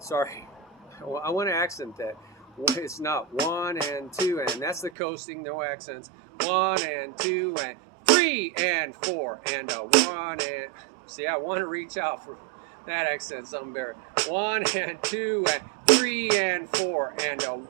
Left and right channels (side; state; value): left; drops out; at 4.9 s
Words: I want to accent that. It's not 1 and 2 and that's the coasting, no accents. 1 and 2 and 3 and 4 and 1 and see, I want to reach out for that accent something better. 1 and 2 and 3 and 4 and